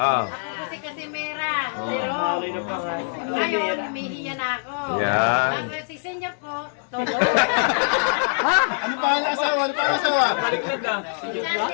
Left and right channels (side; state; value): right; silent; 63 dB below the other